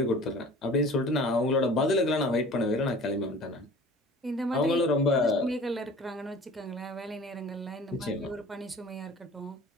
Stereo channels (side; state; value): both; normal; correlation 0.44